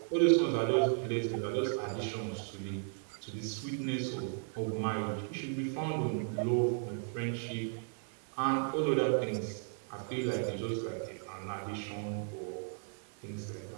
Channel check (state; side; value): silent; left; 54 dB below the other